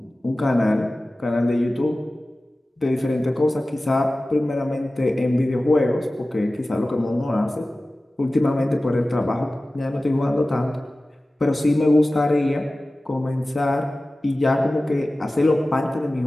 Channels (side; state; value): both; normal; correlation 0.96